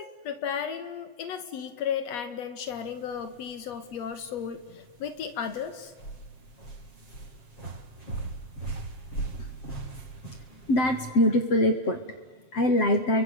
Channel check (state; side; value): late; right; 8.4 ms